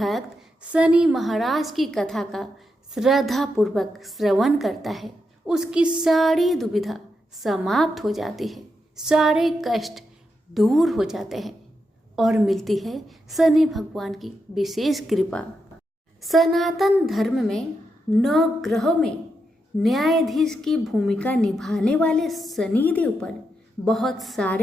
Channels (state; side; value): normal; both; correlation 0.84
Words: शनि महाराज की कथा का श्रद्धा पूर्वक श्रवण करता है उसकी सारी दुविधा समाप्त हो जाती है, सारे कष्ट दूर हो जाते हैं और मिलती है शनि भगवान की विशेष कृपा। सनातन धर्म में 9 ग्रहों में न्यायाधीश की भूमिका निभाने वाले शनि देव पर बहुत